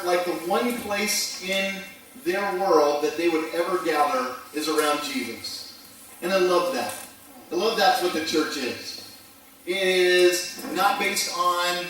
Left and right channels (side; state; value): both; identical; correlation 1.00